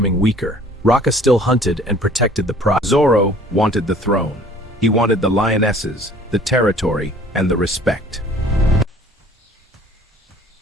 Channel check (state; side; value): normal; both; correlation 0.52